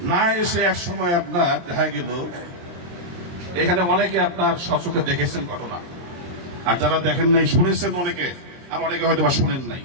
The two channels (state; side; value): late; left; 23 ms